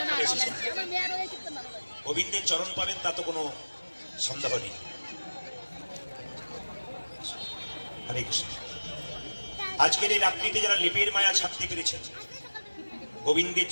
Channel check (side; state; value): both; inverted; correlation -1.00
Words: আপনারা এসেছেন, গোবিন্দের চরণ পাবেন তা তো কোনো সন্দেহ নেই। হরে কৃষ্ণ। আজকের এই রাত্রিতে যারা লেপের মায়া ছাড়তে পেরেছেন গোবিন্দের